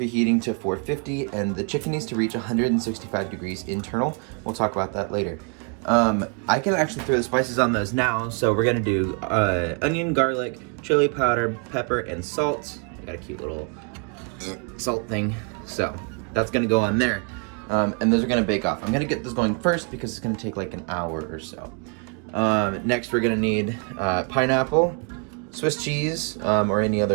to 450 and the chicken needs to reach 165 degrees internal. We'll talk about that later. I can actually throw the spices on those now, so we're gonna do onion, garlic, chili powder, pepper, and salt. I got a cute little salt thing, so that's gonna go on there. And those are gonna bake off. I'm gonna get this going first because it's gonna take like an hour or so. Next we're gonna need pineapple, Swiss cheese, or any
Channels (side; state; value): left; quieter; 36.0 dB